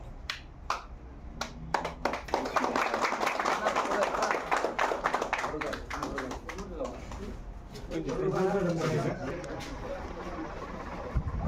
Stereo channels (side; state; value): both; identical; correlation 1.00